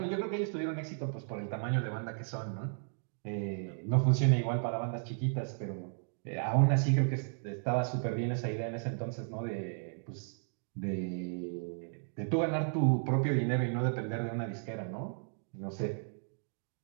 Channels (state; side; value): silent; left; digital silence